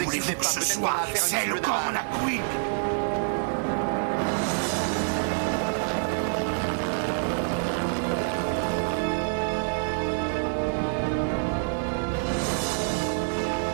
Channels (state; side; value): silent; left; digital silence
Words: que ce soit? C'est le Corona Queen.